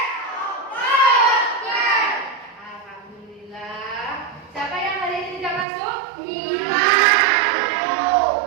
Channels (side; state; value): left; drops out; at 5.7 s